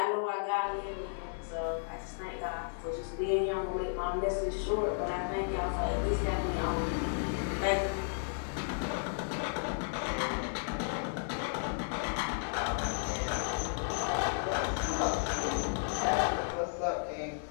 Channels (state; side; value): silent; right; digital silence